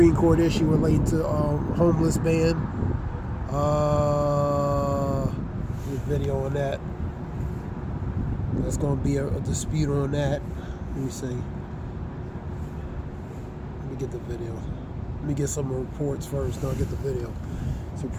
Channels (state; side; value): identical; both; correlation 1.00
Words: Court issue relating to homeless ban. There's a video on that. There's going to be a dispute on that. Let me see. Let me get the video. Let me get some reports first, then I'll get the video.